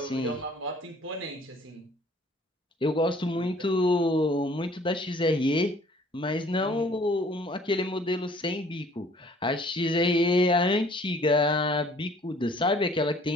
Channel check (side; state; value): both; normal; correlation 0.56